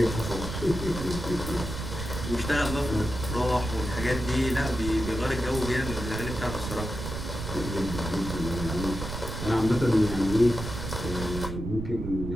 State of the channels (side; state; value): right; noise; rumble, 6 dB below the sound